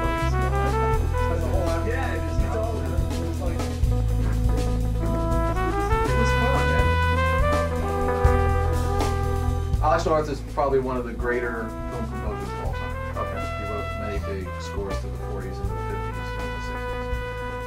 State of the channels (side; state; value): both; identical; correlation 1.00